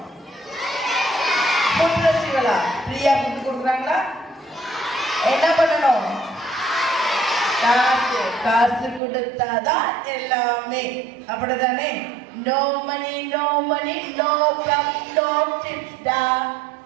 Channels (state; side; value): drops out; left; at 9.0 s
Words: புட்ரசிகளா? ஃப்ரீயா புட்டு கொடுக்குறாங்களா? என்ன பண்ணணும்? காசு கொடுத்தாதான் எல்லாமே, அப்படிதானே? No money no money no gum no tips டா,